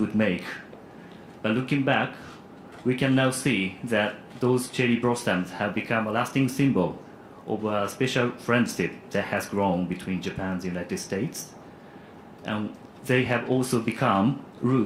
make. But looking back, we can now see that those cherry blossoms have become a lasting symbol of a special friendship that has grown between Japan and the United States. And they have also become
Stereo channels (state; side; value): identical; both; correlation 1.00